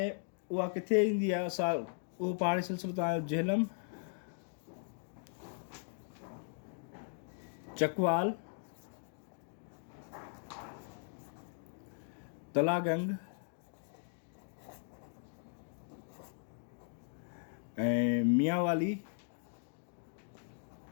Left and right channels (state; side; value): silent; right; digital silence